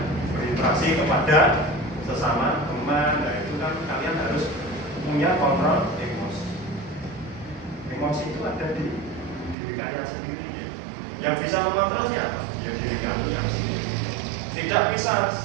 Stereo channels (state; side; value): drops out; left; at 9.6 s